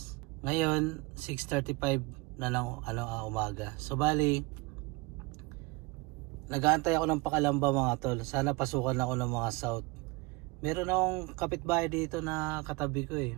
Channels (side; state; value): left; quieter; 24.9 dB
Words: ngayon 6:35 na lang umaga. So bali nag-aantay ako ng Pakalamba mga tol. Sana pasukan ako ng mga south. Meron akong kapitbahay dito na katabi ko